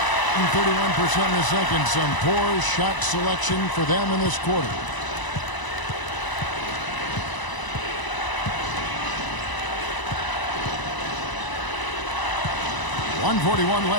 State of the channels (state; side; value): late; right; 1.0 ms